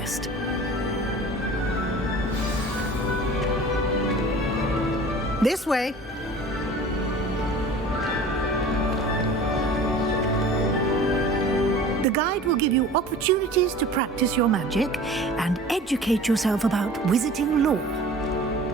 This way. The guide will give you opportunities to practice your magic and educate yourself about wizarding lore.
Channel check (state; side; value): normal; both; correlation 0.42